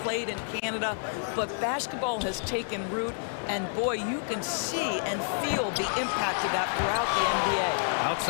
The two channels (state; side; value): silent; right; digital silence